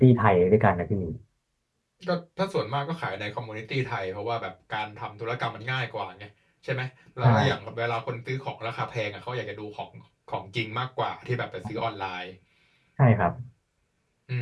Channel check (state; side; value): identical; both; correlation 1.00